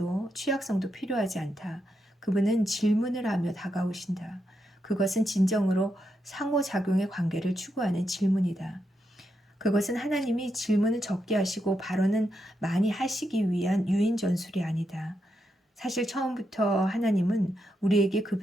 취약성도 필요하지 않다. 그분은 질문을 하며 다가오신다. 그것은 진정으로 상호작용의 관계를 추구하는 질문이다. 그것은 하나님이 질문을 적게 하시고 발언은 많이 하시기 위한 유인 전술이 아니다. 사실 처음부터 하나님은 우리에게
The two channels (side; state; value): both; normal; correlation 0.83